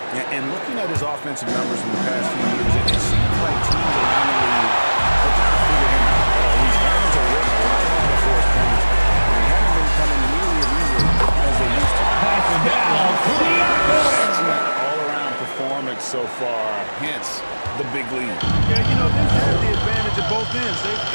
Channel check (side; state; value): both; inverted; correlation -1.00